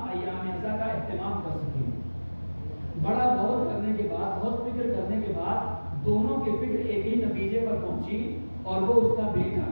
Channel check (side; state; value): both; inverted; correlation -1.00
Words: ایام اعضاء کا اہتمام کر سکیں۔ بڑا غور کرنے کے بعد، بہت فکر کرنے کے بعد دونوں کی فکر ایک ہی نتیجے پر پہنچی، اور وہ اس کا بیٹا